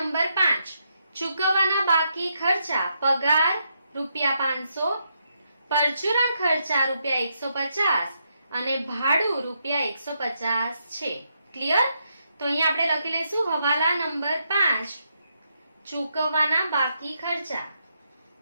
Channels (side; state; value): both; inverted; correlation -0.80